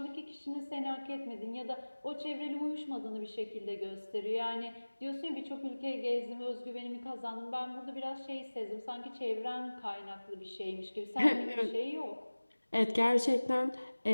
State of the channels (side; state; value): both; inverted; correlation -1.00